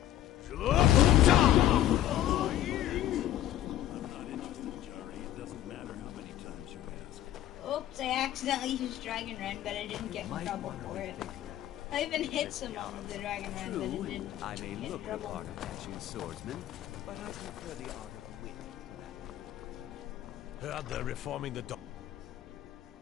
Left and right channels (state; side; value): quieter; right; 12.7 dB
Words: Oops, I accidentally used Dragon Run, but I didn't get in trouble for it. I even hit someone with the Dragon Run, but it didn't I may get in look the trouble. part of dashing swordsman, but I prefer the art of the wit to that. Heard they're reforming the...